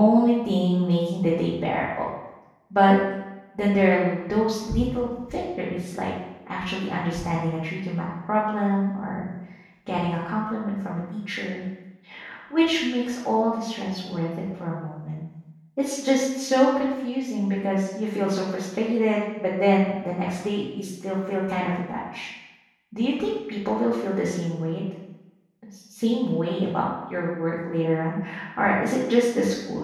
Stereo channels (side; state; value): both; identical; correlation 1.00